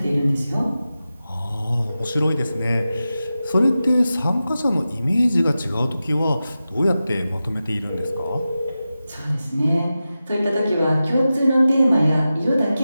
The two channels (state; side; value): inverted; both; correlation -0.93